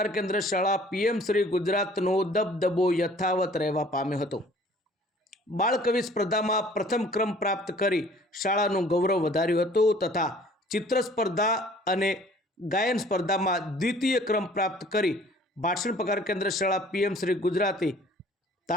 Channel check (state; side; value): normal; both; correlation 0.53